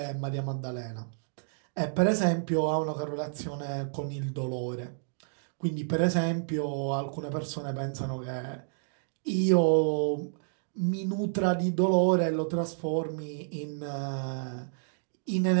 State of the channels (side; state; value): left; silent; digital silence